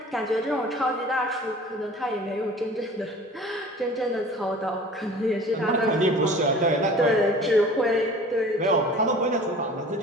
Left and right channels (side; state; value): both; normal; correlation 0.44